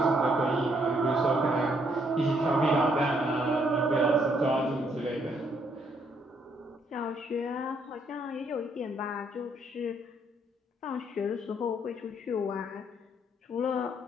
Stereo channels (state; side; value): normal; both; correlation 0.70